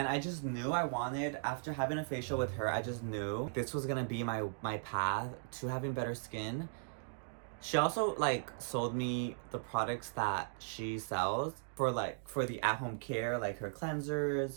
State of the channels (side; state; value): left; silent; digital silence